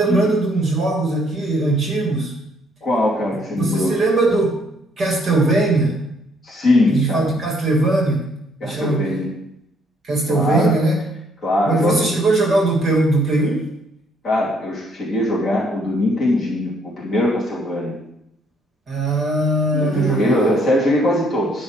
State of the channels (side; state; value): both; normal; correlation 0.67